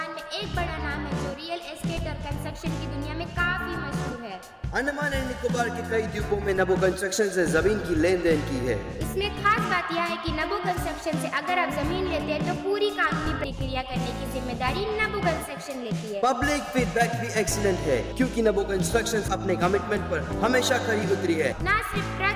में एक बड़ा नाम है जो रियल एस्टेट और कंस्ट्रक्शन की दुनिया में काफी मशहूर है। अंडमान एंड निकोबार के कई द्वीपों में नबो कंस्ट्रक्शन से जमीन की लेन देन की है। इसमें खास बात यह है कि नबो कंस्ट्रक्शन से अगर आप जमीन लेते हैं तो पूरी कानूनी प्रक्रिया करने की जिम्मेदारी नबो कंस्ट्रक्शन लेती है। पब्लिक फीडबैक भी एक्सीलेंट है क्योंकि नबो कंस्ट्रक्शन अपने कमिटमेंट पर हमेशा खरी उतरी है। न सिर्फ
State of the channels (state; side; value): identical; both; correlation 1.00